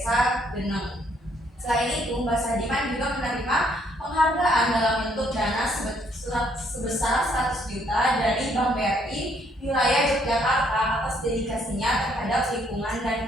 Geneng. Selain itu, Mbak Sadiman juga menerima penghargaan dalam bentuk dana sebesar 100 juta dari Bank BRI wilayah Yogyakarta atas dedikasinya terhadap lingkungan dan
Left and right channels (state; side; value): normal; both; correlation 0.68